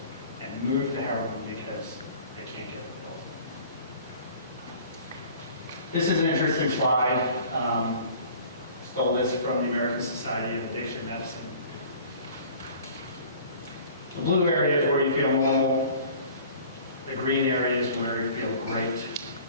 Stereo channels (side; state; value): both; inverted; correlation -0.48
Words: and move to heroin because they can't get the pills. This is an interesting slide. Stole this from the American Society of Addiction Medicine. The blue area is where you feel normal. The green area is where you feel great.